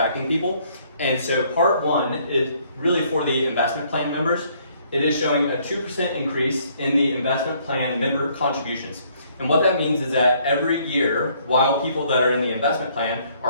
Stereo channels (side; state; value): both; inverted; correlation -0.65